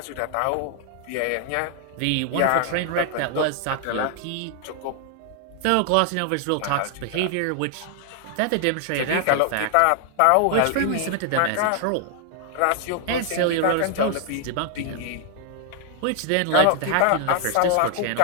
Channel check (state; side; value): different; both; correlation 0.00